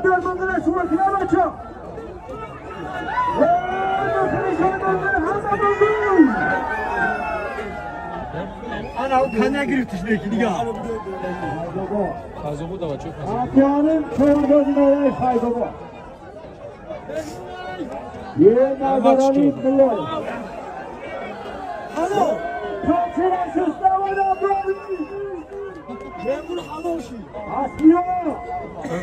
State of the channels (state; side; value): identical; both; correlation 1.00